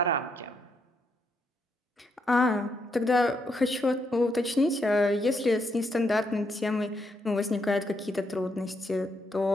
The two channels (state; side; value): normal; both; correlation 0.77